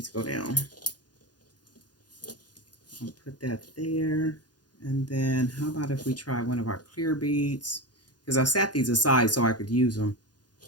go down. I'll put that there. And then how about if we try one of our clear beads? Because I set these aside so I could use them.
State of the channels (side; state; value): right; late; 0.69 ms